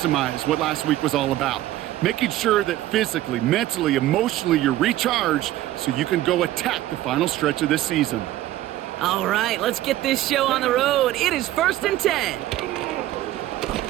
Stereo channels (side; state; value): left; quieter; 14.5 dB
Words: what last week was all about. Making sure that physically, mentally, emotionally, you're recharged so you can go attack the final stretch of this season. All right, let's get this show on the road. It is 1st and 10.